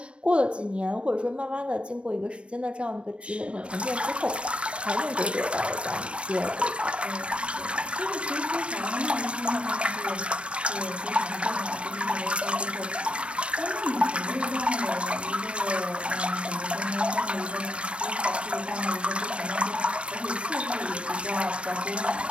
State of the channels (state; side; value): late; left; 0.060 ms